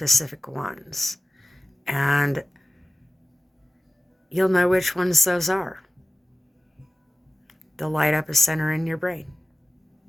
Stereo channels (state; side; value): normal; both; correlation 0.97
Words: ones. And you'll know which ones those are. They'll light up a center in your brain.